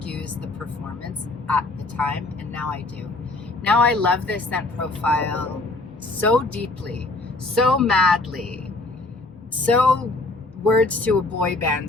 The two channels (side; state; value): right; quieter; 3.0 dB